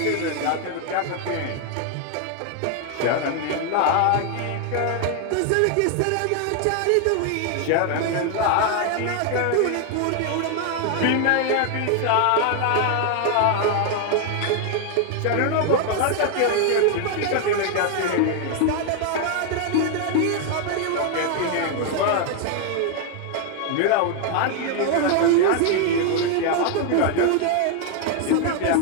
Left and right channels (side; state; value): both; different; correlation 0.00